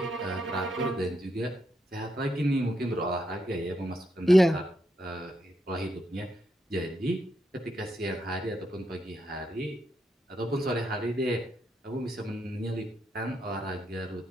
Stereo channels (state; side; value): normal; both; correlation 0.81